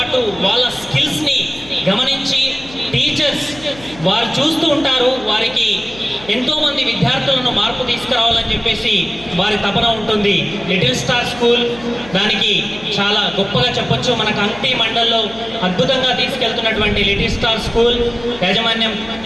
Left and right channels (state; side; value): noise; left; hum, 19 dB below the sound